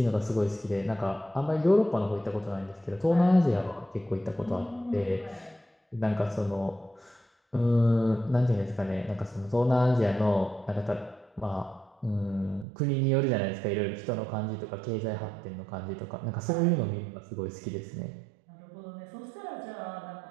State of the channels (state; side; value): drops out; left; at 12.7 s